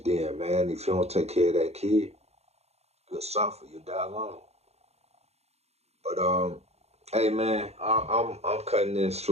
then, man. If you don't take care of that kid, you'll suffer. You'll die alone. But hey, man, I'm cutting this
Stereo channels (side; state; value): left; late; 0.31 ms